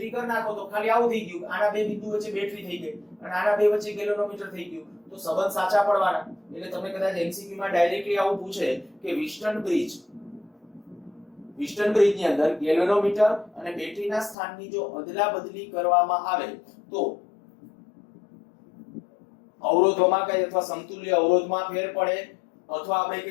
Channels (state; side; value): drops out; right; at 14.4 s